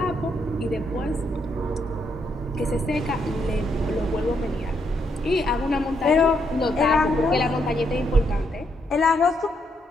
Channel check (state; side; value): normal; both; correlation 0.76